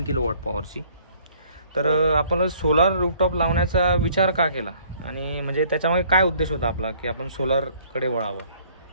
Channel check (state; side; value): inverted; both; correlation -0.59